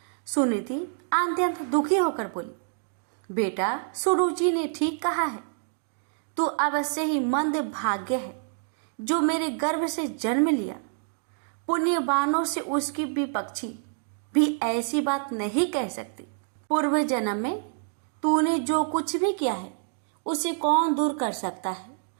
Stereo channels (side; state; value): left; silent; digital silence